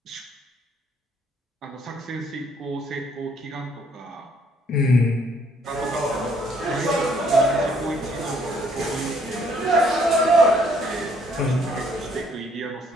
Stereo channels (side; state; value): both; normal; correlation 0.65